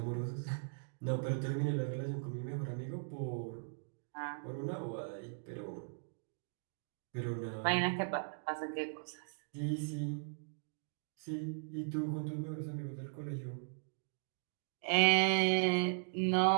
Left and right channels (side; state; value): left; silent; digital silence